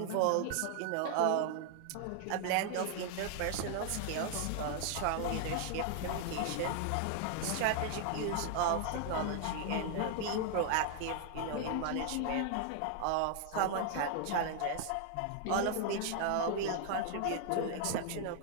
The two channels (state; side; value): different; both; correlation 0.00